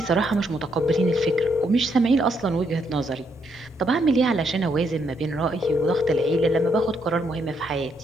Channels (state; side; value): normal; both; correlation 0.75